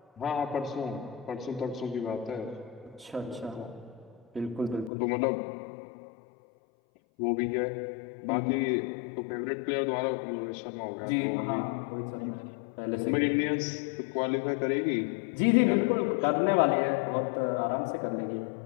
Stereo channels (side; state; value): right; drops out; at 4.9 s